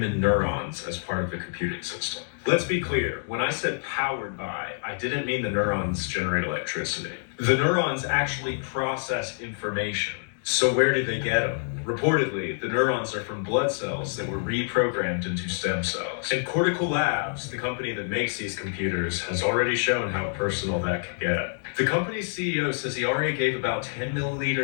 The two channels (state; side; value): silent; right; digital silence